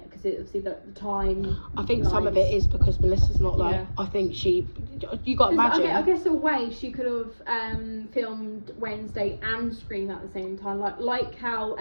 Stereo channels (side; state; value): both; inverted; correlation -1.00